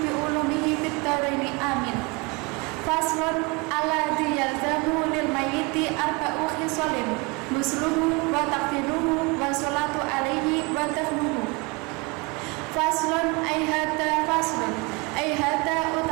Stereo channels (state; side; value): quieter; left; 27.3 dB